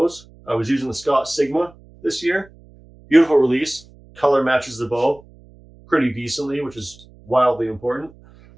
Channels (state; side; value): noise; right; hum, 25 dB below the sound